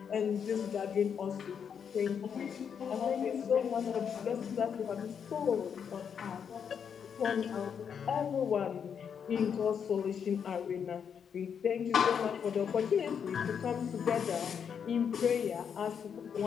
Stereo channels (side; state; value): right; quieter; 7.4 dB